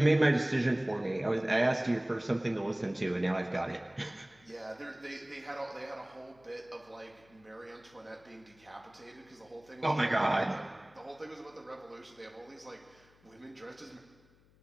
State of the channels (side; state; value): left; noise; hum, 30 dB below the sound